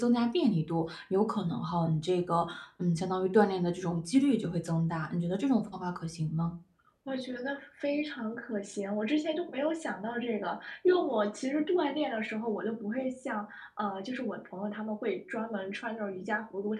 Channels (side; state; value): both; identical; correlation 1.00